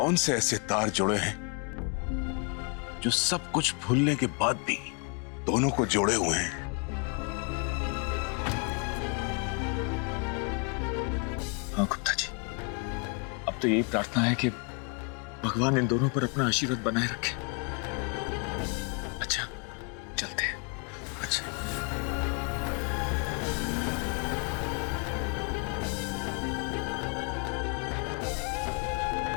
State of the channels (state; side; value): quieter; right; 35.6 dB